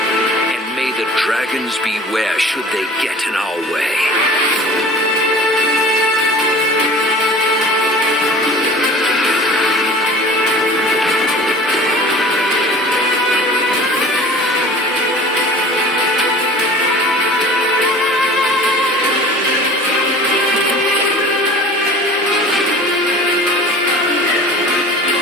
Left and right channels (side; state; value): both; normal; correlation 0.42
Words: And may the dragons beware should they get in our way.